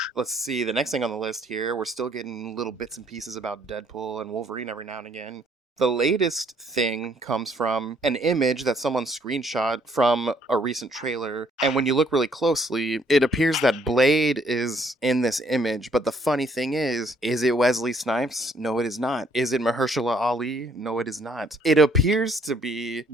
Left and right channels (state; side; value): normal; both; correlation 0.65